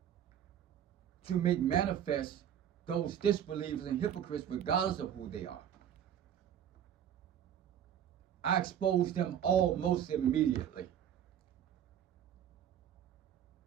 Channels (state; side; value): quieter; left; 9.8 dB